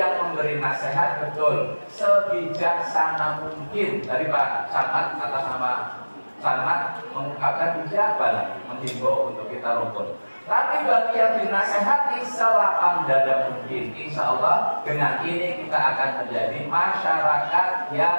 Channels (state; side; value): inverted; both; correlation -1.00